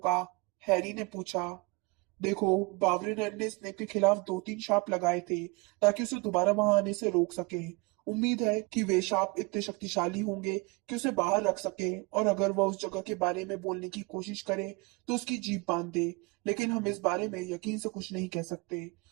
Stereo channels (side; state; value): left; quieter; 27.5 dB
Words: हैरी ने पूछा। देखो, बावरिन ने स्नेप के खिलाफ 2-3 शाप लगाए थे, ताकि उसे दोबारा वहां आने से रोक सके। उम्मीद है कि वे शाप इतने शक्तिशाली होंगे कि उसे बाहर रख सके, और अगर वह उस जगह के बारे में बोलने की कोशिश करे तो उसकी जीभ बांध दे। लेकिन हम इस बारे में यकीन से कुछ नहीं कह सकते।